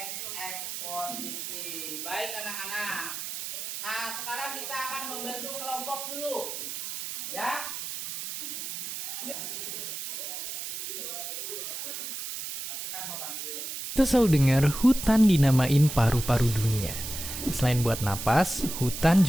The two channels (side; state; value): right; noise; hiss, 7 dB below the sound